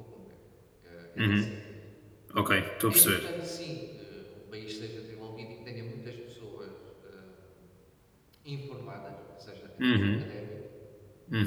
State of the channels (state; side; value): identical; both; correlation 1.00